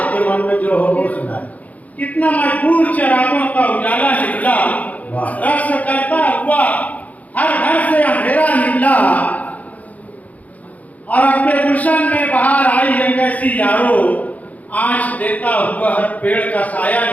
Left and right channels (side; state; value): right; late; 0.074 ms